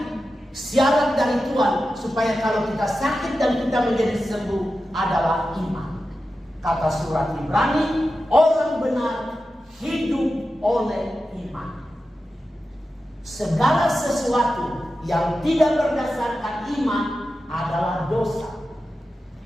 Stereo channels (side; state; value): both; normal; correlation 0.92